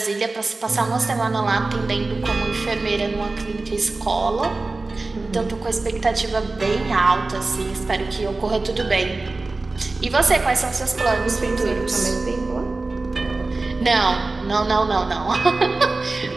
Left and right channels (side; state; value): left; quieter; 3.4 dB